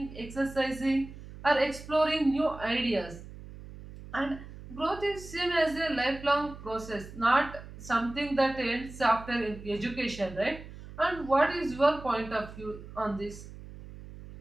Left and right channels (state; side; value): noise; right; hum, 15 dB below the sound